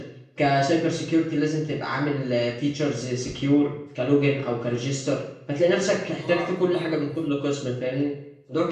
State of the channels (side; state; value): both; identical; correlation 1.00